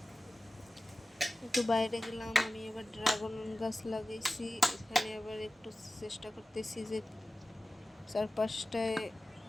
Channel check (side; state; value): both; normal; correlation 0.96